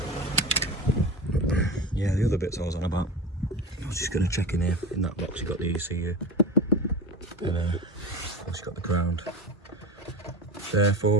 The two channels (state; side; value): normal; both; correlation 0.29